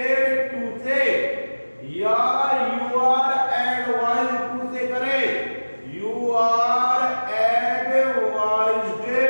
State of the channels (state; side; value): inverted; both; correlation -1.00